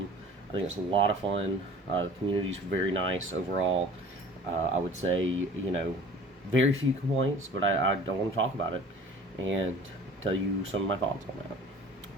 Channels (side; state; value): both; normal; correlation 0.46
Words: I think it's a lot of fun. The community's very nice overall. I would say, very few complaints, but I don't want to talk about it and tell you some of my thoughts on